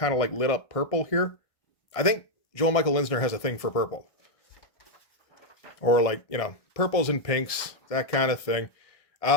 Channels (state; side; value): late; right; 1.6 ms